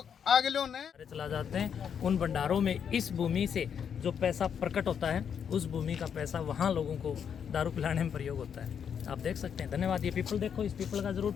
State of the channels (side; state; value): right; quieter; 7.7 dB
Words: आगे लो ने चला जाते हैं उन भंडारों में। इस भूमि से जो पैसा प्रकट होता है उस भूमि का पैसा वहाँ लोगों को दारू पिलाने में प्रयोग होता है। आप देख सकते हैं। धन्यवाद। ये पीपल देखो, इस पीपल का जरूर